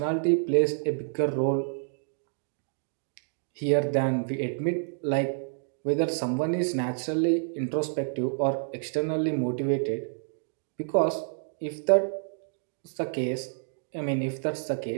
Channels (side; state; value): left; silent; digital silence